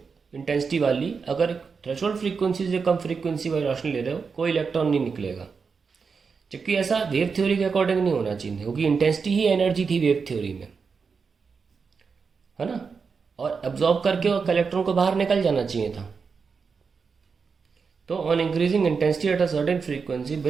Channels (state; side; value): quieter; left; 5.4 dB